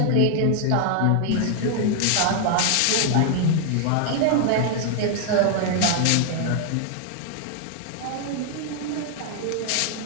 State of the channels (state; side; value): different; both; correlation 0.00